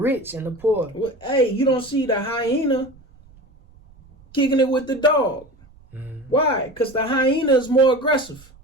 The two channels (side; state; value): right; noise; rumble, 26 dB below the sound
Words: and the poor? Well, hey, you don't see the hyena kicking it with the dog. Why? Because the hyena is more aggressive.